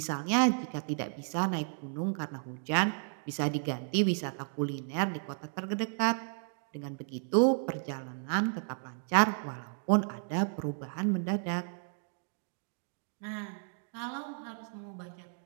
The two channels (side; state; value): left; silent; 56 dB below the other